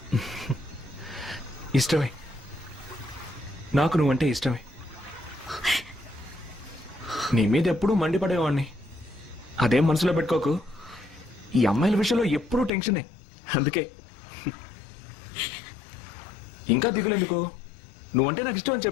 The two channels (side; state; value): right; drops out; at 12.7 s